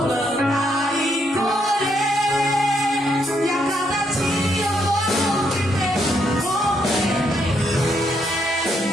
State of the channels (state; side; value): normal; both; correlation 0.75